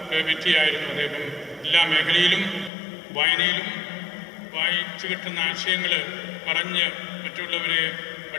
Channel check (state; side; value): drops out; right; at 2.7 s